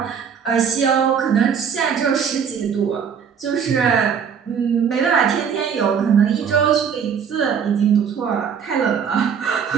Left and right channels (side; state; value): left; quieter; 7.2 dB